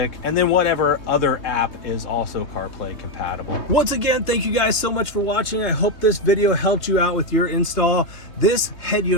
and then whatever other app is also CarPlay compatible. Once again, thank you guys so much for watching. I hope this video helped you out with your install. This head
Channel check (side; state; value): right; late; 3.2 ms